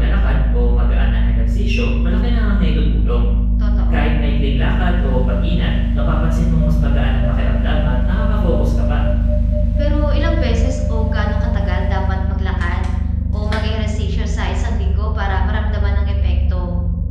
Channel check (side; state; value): both; identical; correlation 1.00